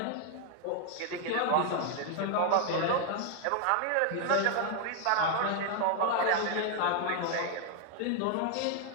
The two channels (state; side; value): different; both; correlation 0.00